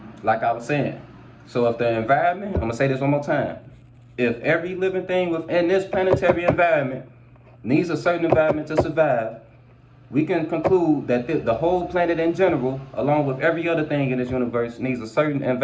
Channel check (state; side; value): identical; both; correlation 1.00